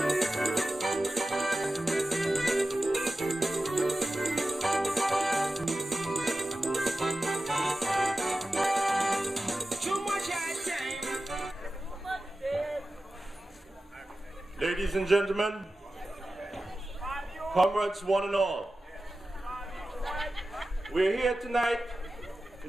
Ladies and gentlemen, comrades one and all, we're here tonight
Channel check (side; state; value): both; normal; correlation 0.94